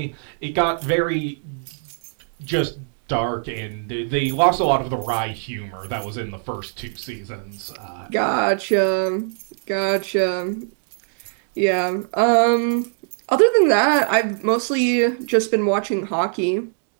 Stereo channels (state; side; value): silent; left; digital silence